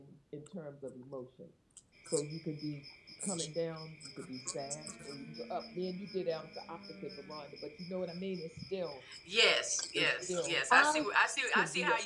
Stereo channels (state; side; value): identical; both; correlation 1.00